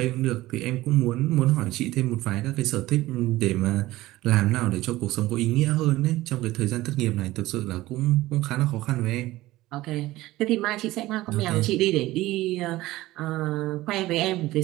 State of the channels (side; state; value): left; quieter; 17.4 dB